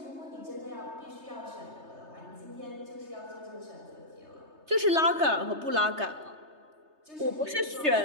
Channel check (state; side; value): late; left; 3.3 ms